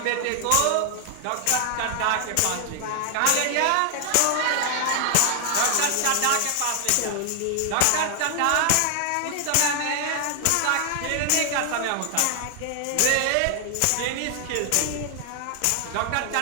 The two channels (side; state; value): both; different; correlation 0.00